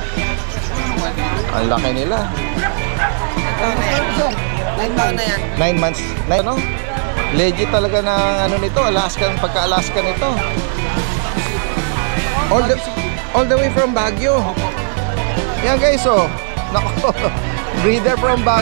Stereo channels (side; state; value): left; silent; 61 dB below the other